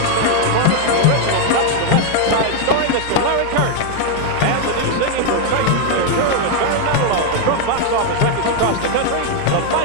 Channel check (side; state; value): both; different; correlation 0.00